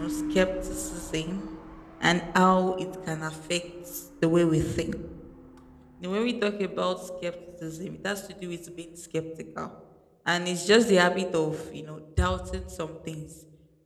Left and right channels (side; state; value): both; identical; correlation 1.00